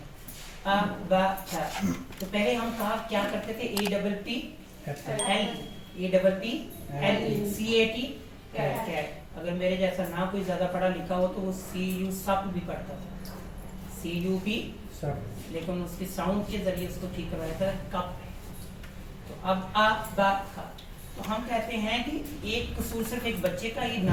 अ ब च। तो पहले हम कहा क्या करते थे, APPL, CAT कैट। अगर मेरे जैसा ना कोई ज्यादा पढ़ा लिखा हो तो वो CU सप भी पढ़ता था, CUP, लेकिन उसकी साउंड के जरिए उसको ठीक करवाया था कप। तो अब अ ब ख। तो हम कहते हैं कि एक कसूर सिर्फ एक बच्चे का ही,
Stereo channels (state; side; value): identical; both; correlation 1.00